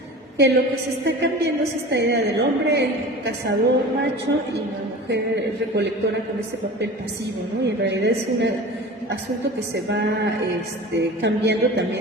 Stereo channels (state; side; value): normal; both; correlation 0.36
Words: Que lo que se está cambiando es esta idea del hombre, el cazador macho, y la mujer recolectora con ese papel pasivo, ¿no? Y en realidad es un asunto que se va cambiando